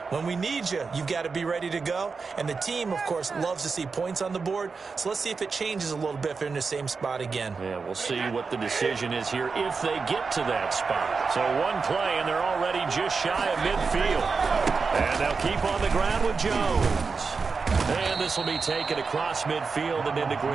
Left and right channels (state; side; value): quieter; left; 4.8 dB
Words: When we need you, you've got to be ready to go. And the team, of course, loves to see points on the board. So let's see if it changes a little bit if they're in the same spot again. Yeah, we'll see what the decision is here if they get to that spot. So one play, and they're already just shy of midfield. And they'll keep on the ground with Jones. And this will be taken across midfield and into